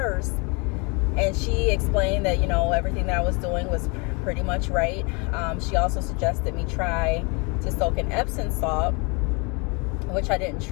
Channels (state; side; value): quieter; right; 30.8 dB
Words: and she explained that everything that I was doing was pretty much right. She also suggested me try to soak in Epsom salt, which I didn't